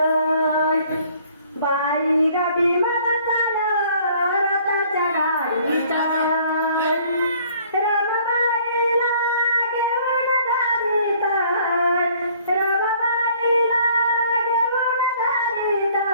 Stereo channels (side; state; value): both; inverted; correlation -0.58